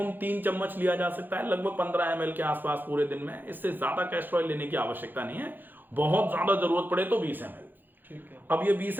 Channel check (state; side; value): late; left; 0.090 ms